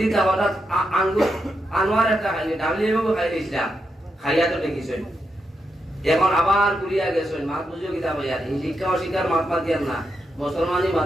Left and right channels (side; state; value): both; normal; correlation 0.84